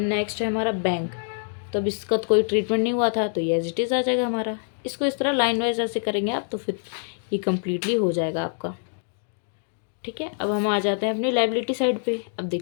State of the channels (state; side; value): silent; right; digital silence